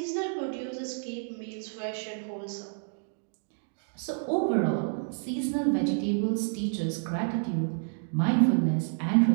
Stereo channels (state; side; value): silent; left; digital silence